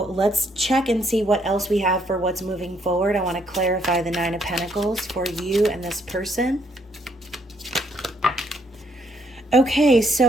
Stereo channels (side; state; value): both; normal; correlation 0.70